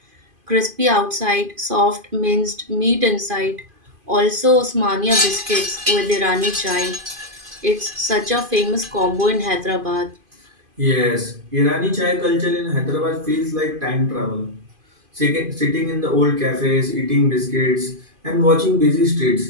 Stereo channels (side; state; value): left; late; 2.5 ms